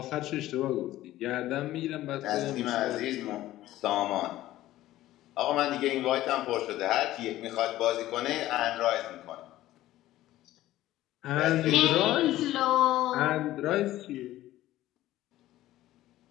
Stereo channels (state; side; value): quieter; right; 15.1 dB